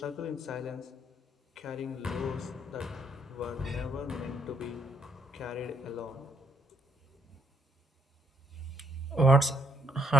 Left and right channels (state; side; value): normal; both; correlation 0.71